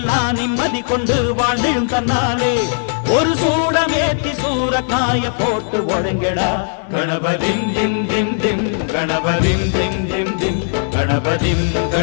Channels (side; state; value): right; silent; digital silence